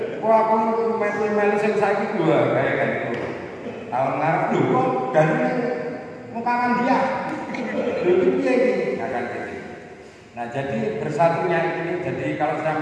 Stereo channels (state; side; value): identical; both; correlation 1.00